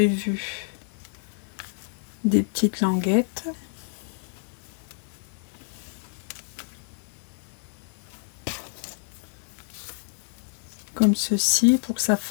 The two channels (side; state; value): right; silent; 59 dB below the other